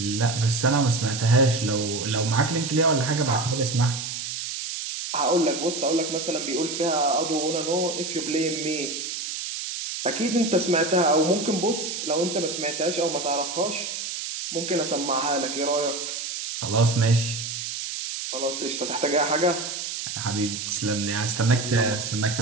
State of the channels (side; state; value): right; noise; hiss, 5 dB below the sound